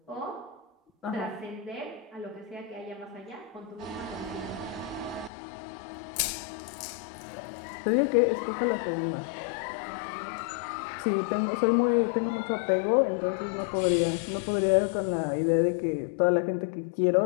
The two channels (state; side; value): drops out; right; at 5.3 s